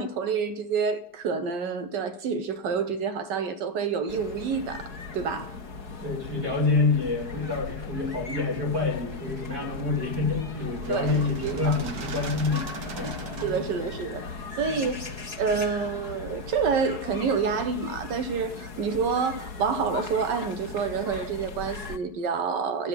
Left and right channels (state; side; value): late; left; 4.7 ms